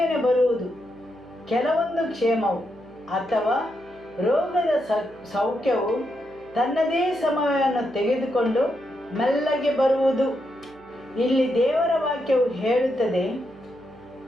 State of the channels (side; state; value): right; noise; hum, 27 dB below the sound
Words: ಬರುವುದು, ಕೆಲವೊಂದು ಕ್ಷೇಮವು ಅಥವಾ ರೋಗದ ಸೌಖ್ಯವು ತನ್ನದೇ ಸಮಯವನ್ನು ತೆಗೆದುಕೊಂಡು ಮೆಲ್ಲಗೆ ಬರುವುದು. ಇಲ್ಲಿ ದೇವರ ವಾಕ್ಯವು